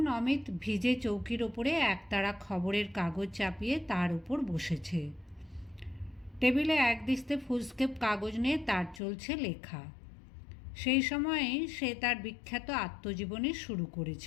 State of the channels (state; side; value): drops out; right; at 9.0 s